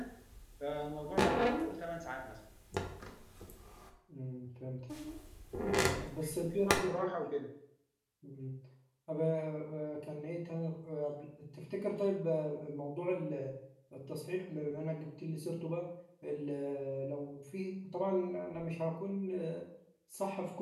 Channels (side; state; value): both; identical; correlation 1.00